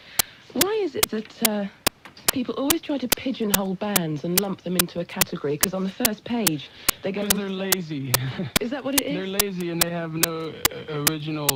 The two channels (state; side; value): identical; both; correlation 1.00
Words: Why is it that people always try to pigeonhole bands and lump them into a category? Because on the first page, they go... Because they're lazy. Is that what it is? They're lazy and they have no